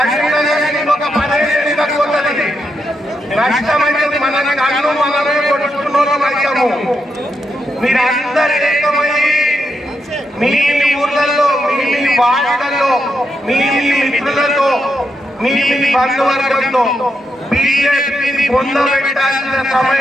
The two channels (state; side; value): normal; both; correlation 0.82